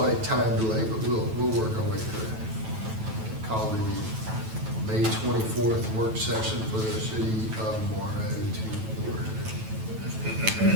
time delay, but we'll work our way through it. Call the May 24th work session for the city of Morrow to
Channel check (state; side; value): late; left; 9.1 ms